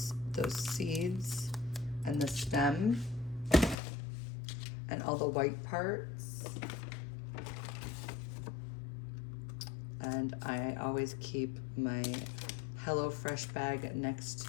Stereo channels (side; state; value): right; drops out; at 3.8 s